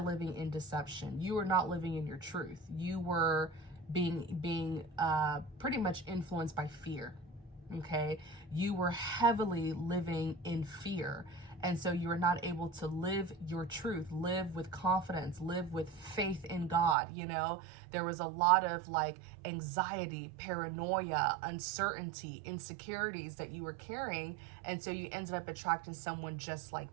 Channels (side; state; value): left; drops out; at 16.9 s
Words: in deception. You were not living in your truth. You were being pretty much influenced by fear, okay? You were heavily living in fear. And so you were not able to live your truth, live with confidence, live with faith in God, you know? There was a lot of like anxiety, paranoia, uncertainty, insecurities that you were carrying. And so you ended up attracting someone just